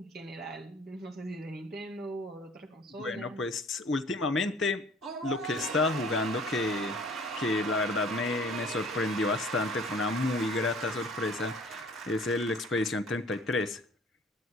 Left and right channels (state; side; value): normal; both; correlation 0.51